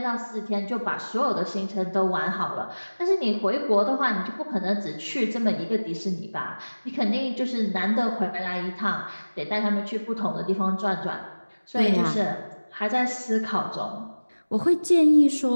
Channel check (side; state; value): both; inverted; correlation -1.00